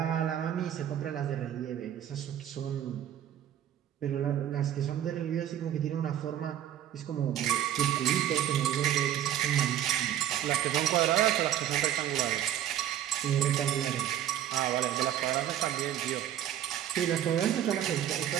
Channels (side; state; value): left; quieter; 11.1 dB